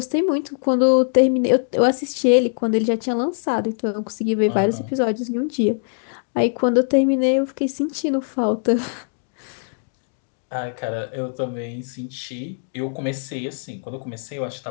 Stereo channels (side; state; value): right; silent; digital silence